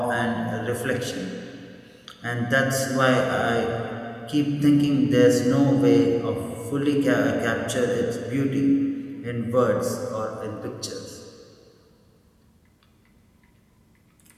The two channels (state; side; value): identical; both; correlation 1.00